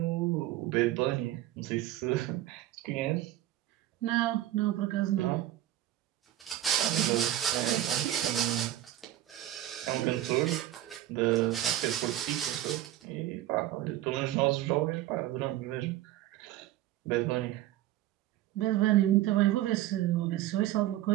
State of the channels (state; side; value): quieter; left; 13.8 dB